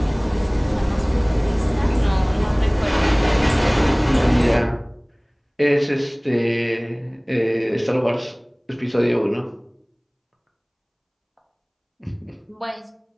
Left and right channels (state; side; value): identical; both; correlation 1.00